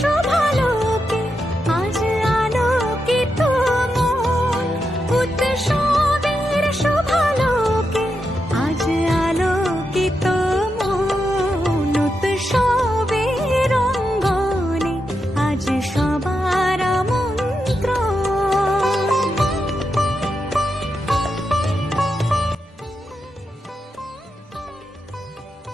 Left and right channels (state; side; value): normal; both; correlation 0.86